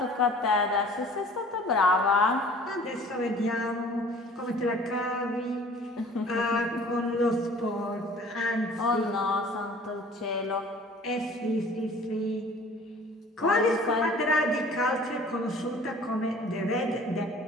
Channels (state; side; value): normal; both; correlation 0.49